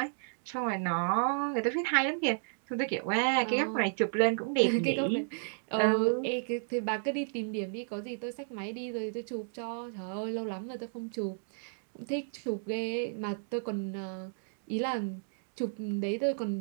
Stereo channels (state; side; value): silent; left; digital silence